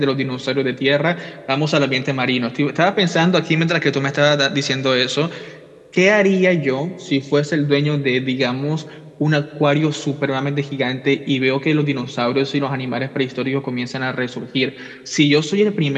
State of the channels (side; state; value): both; identical; correlation 1.00